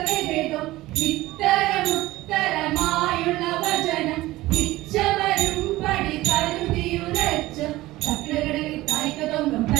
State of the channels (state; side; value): quieter; left; 17.9 dB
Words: ഇത്തരമുത്തരമായുള്ള വചനം ഇച്ചവരും പടി കരുതിയുരച്ച് തക്കിടകിടയിൽ തായ്ക്കതൊങ്കം